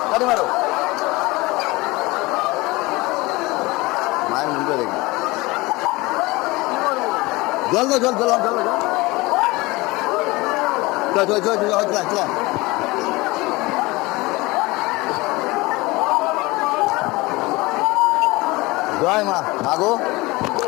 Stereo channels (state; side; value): quieter; right; 22.3 dB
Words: গাড়ি মারো। মায়ের মুখে দেখি জল দাও, জল জল জল জল, চল চল চল চল চল। জয় মা, মাগো